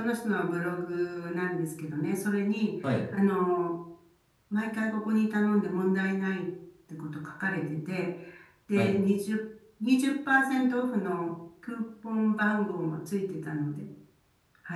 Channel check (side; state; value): both; identical; correlation 1.00